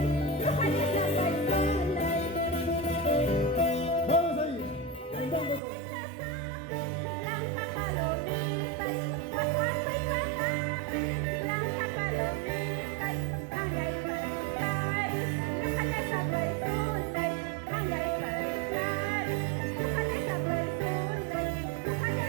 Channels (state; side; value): drops out; left; at 5.6 s